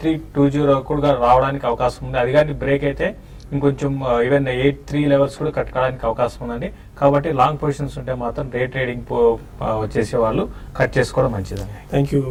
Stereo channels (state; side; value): identical; both; correlation 1.00